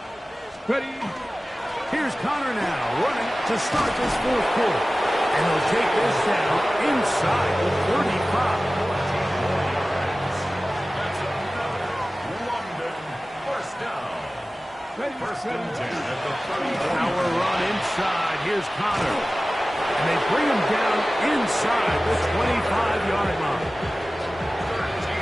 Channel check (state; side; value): normal; both; correlation 0.97